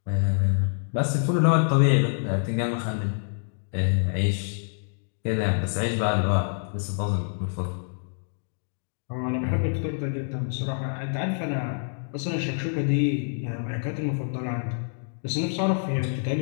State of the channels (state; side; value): silent; right; digital silence